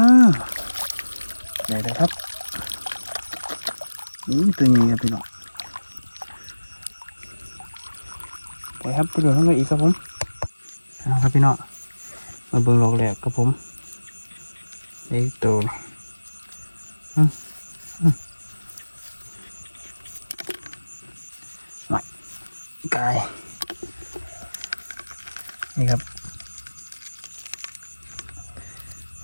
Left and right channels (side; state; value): both; inverted; correlation -1.00